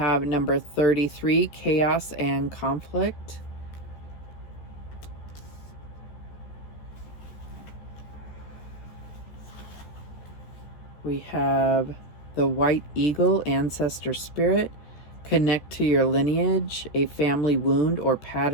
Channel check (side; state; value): right; late; 14 ms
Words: number 33, chaos and conflict. We have the White Eagle, ancestor spirit. Connect to your lineage. A family wound or